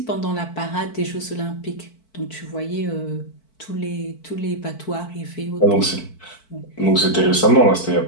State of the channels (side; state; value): right; late; 4.5 ms